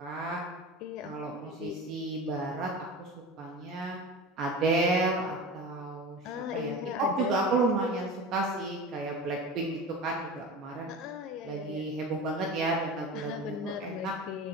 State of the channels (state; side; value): normal; both; correlation 0.32